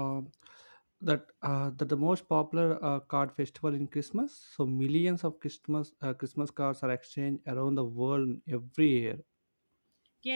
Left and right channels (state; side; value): inverted; both; correlation -1.00